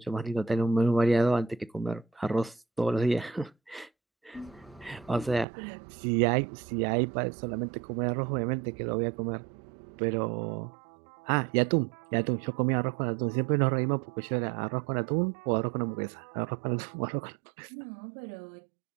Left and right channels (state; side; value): drops out; left; at 5.5 s